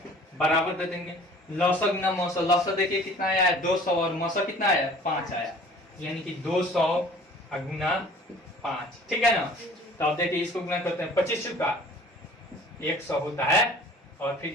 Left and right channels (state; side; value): normal; both; correlation 0.49